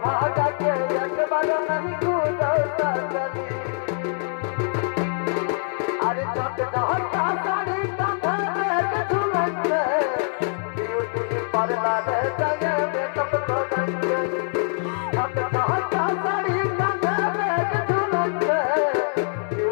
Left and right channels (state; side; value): silent; right; digital silence